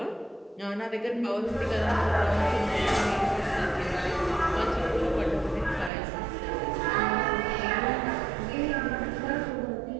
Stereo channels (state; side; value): drops out; left; at 5.9 s